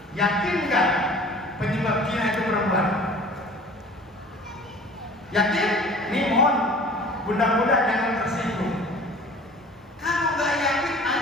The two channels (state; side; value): normal; both; correlation 0.45